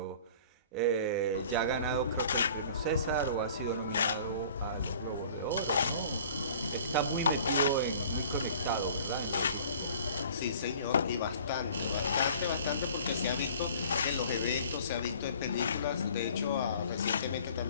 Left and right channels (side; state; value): both; inverted; correlation -0.48